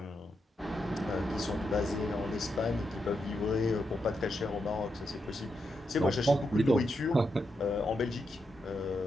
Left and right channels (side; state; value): both; normal; correlation 0.84